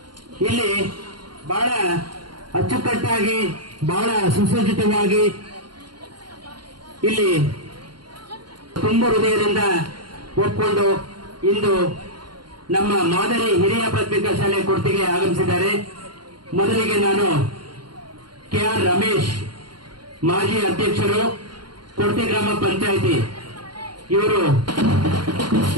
ಇಲ್ಲಿ ಬಹಳ ಅಚ್ಚುಕಟ್ಟಾಗಿ ಬಹಳ ಸುಸಜ್ಜಿತವಾಗಿ ಇಲ್ಲಿ ತುಂಬ ಹೃದಯದಿಂದ ಒಪ್ಪಿಕೊಂಡು ಇಂದು ನಮ್ಮ ಮಾದರಿ ಹಿರಿಯ ಪ್ರಾಥಮಿಕ ಶಾಲೆ ಕೊಡ್ತಿಗೆ ಆಗಮಿಸಿದ್ದಾರೆ. ಮೊದಲಿಗೆ ನಾನು ಕೆಆರ್ ರಮೇಶ್ ಮಾಜಿ ಅಧ್ಯಕ್ಷರು ಕೊಡ್ತಿ ಗ್ರಾಮ ಪಂಚಾಯಿತಿ ಇವರು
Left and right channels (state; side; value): late; left; 0.71 ms